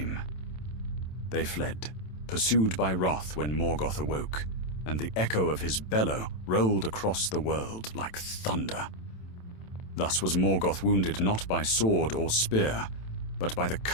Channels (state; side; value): late; right; 27 ms